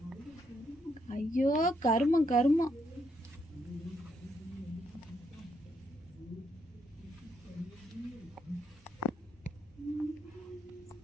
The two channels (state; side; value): normal; both; correlation 0.76